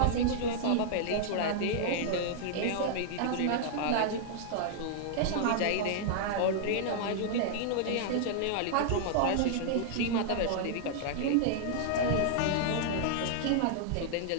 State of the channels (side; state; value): both; different; correlation -0.01